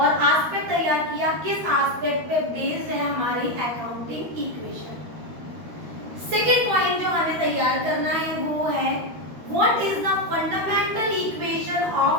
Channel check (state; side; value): late; left; 13 ms